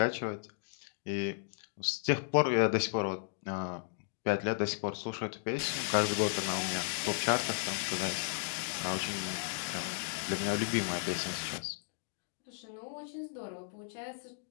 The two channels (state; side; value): silent; right; digital silence